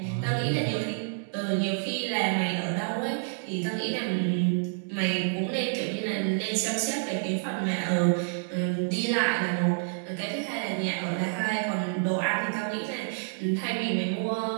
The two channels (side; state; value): left; silent; digital silence